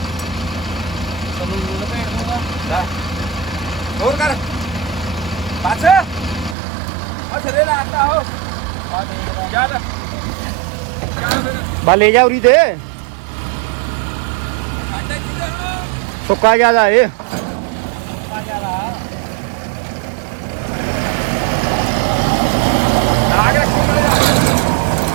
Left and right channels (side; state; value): left; drops out; at 6.6 s